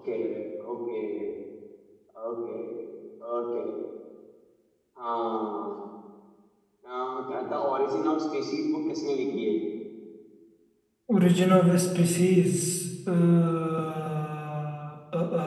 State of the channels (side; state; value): both; identical; correlation 1.00